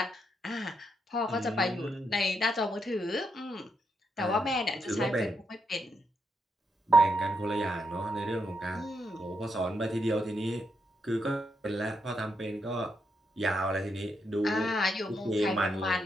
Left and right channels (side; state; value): both; normal; correlation 0.81